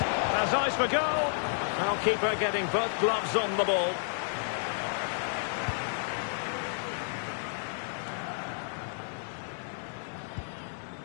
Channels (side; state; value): right; silent; digital silence